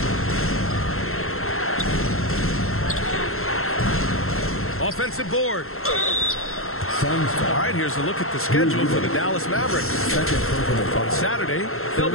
Offensive board. All right, here's a look at the schedule for the Dallas Mavericks. On Saturday, they'll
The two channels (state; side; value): late; right; 0.62 ms